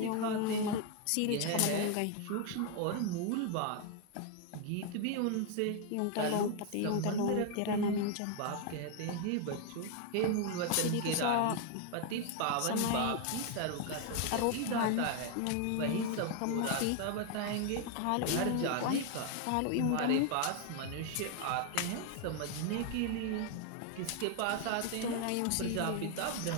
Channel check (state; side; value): different; both; correlation 0.01